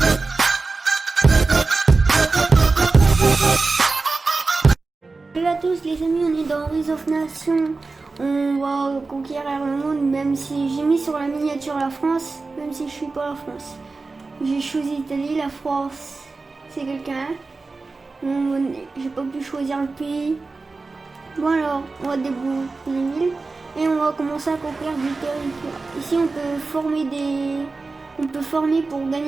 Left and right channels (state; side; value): quieter; left; 3.8 dB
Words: Salut à tous les amis, on est dans Rise of Nations. On va conquérir le monde, même si j'ai mis sur la miniature la France, même si je suis pas la France. J'ai choisi l'Italie, la France, c'est quelqu'un. J'ai pas pu choisir le pays. Bon alors, on va débloquer les villes et on va commencer à conquérir du territoire. Ici on peut former pour